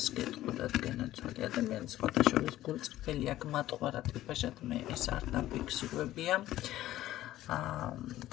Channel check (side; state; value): right; quieter; 14.4 dB